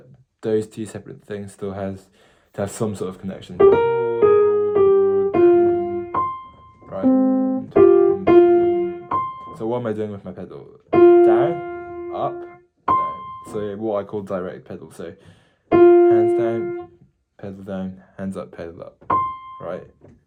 those two separate things still have some sort of connection. Right? So what am I doing with my pedal? Down, up, down. So what I call direct pedal. So hands down, pedal down, hands up, pedal up. Right?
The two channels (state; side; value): identical; both; correlation 1.00